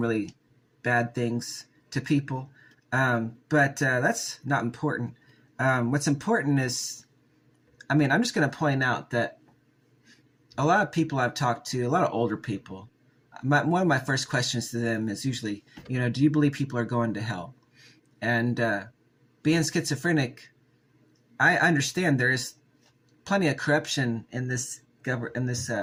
bad things to people. But that's not important. What's important is, I'm just going to point out that a lot of people I've talked to, a lot of older people, one of my first questions to them is usually, do you believe people are going to hell? And being schizophrenic, I understand there is plenty of corruption in this in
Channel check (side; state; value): both; identical; correlation 1.00